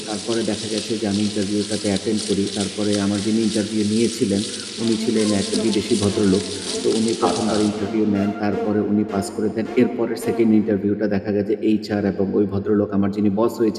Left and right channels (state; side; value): identical; both; correlation 1.00